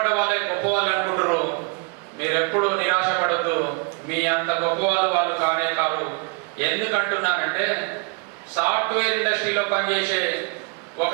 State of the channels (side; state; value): left; quieter; 33.4 dB